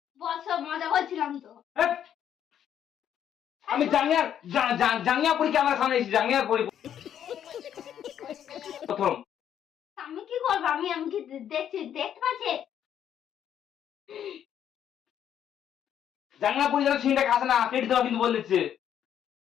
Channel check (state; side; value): quieter; right; 9.7 dB